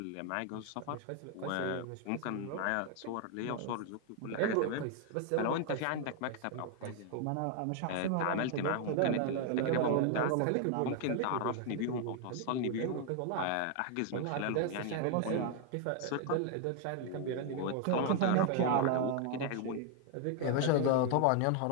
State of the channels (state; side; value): different; both; correlation 0.00